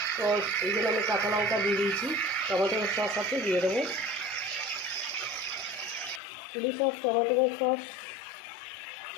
তো এই জন্য আমি কাঁচা লঙ্কা দিয়ে দিয়েছি, টমেটো সস সাথে দিয়ে দেবো। চিলি সস টমেটো সস,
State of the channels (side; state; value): right; drops out; at 6.2 s